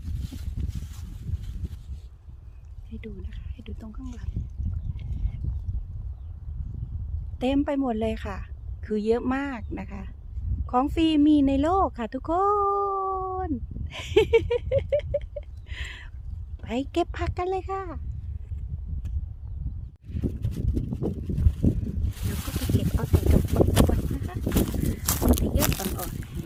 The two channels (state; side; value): identical; both; correlation 1.00